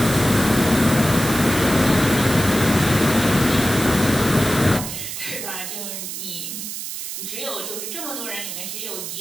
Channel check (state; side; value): noise; right; hiss, 7 dB below the sound